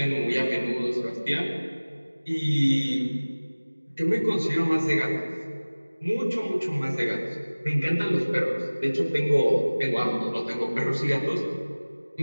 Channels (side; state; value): both; inverted; correlation -1.00